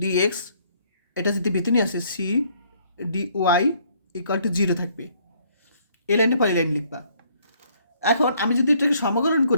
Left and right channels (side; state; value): both; inverted; correlation -0.65